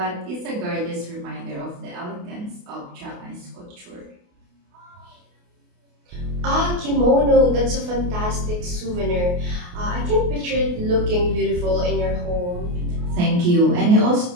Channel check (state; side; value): late; left; 28 ms